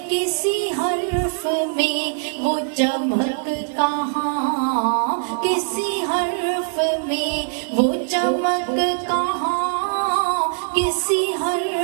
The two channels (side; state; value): left; silent; digital silence